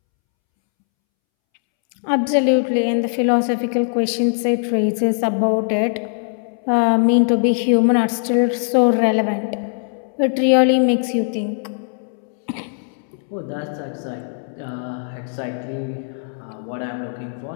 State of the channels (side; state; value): right; silent; 65 dB below the other